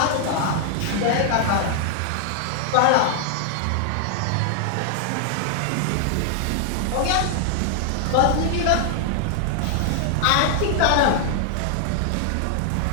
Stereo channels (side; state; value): both; different; correlation 0.00